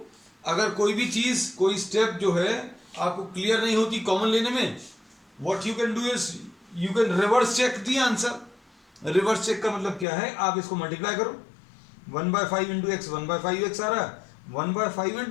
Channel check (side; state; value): right; drops out; at 10.1 s